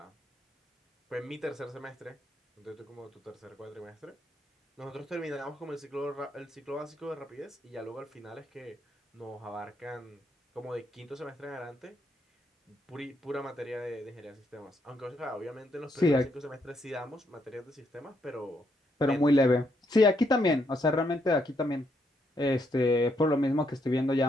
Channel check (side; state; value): both; normal; correlation 0.76